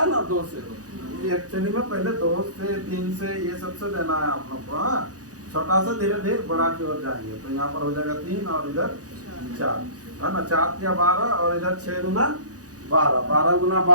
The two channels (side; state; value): left; late; 0.67 ms